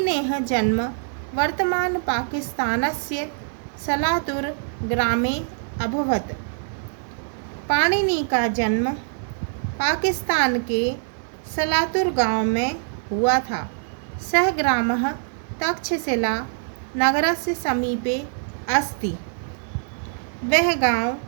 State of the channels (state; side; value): silent; left; digital silence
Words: जन्म वर्तमान पाकिस्तानस्य सलातुर ग्रामे अभवत्। पाणिनि का जन्म पाकिस्तान के सलातुर गांव में हुआ था। सः ग्रामः तक्षशिला नगरस्य समीपे अस्ति। वह गांव